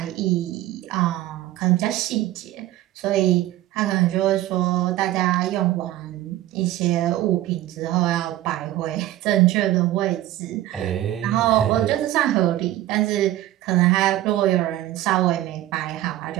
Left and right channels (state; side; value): quieter; left; 14.8 dB